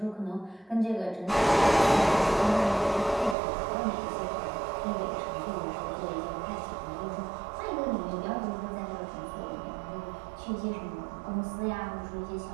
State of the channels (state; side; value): drops out; left; at 3.4 s